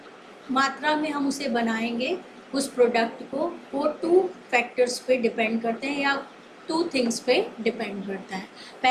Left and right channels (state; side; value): identical; both; correlation 1.00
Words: मात्रा में हम उसे बनाएंगे उस प्रोडक्ट को, वो टू फैक्टर्स पे डिपेंड करते हैं या टू थिंग्स पे डिपेंड करता है.